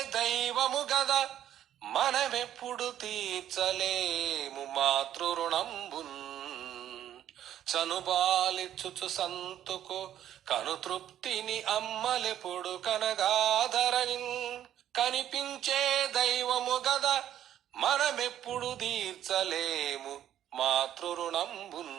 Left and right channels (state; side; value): quieter; left; 11.1 dB